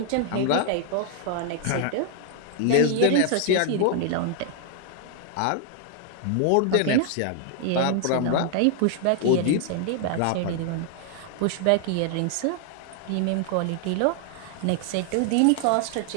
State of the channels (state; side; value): different; both; correlation 0.00